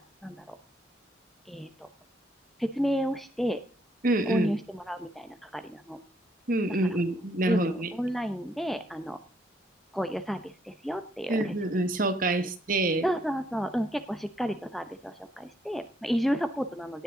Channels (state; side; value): normal; both; correlation 0.71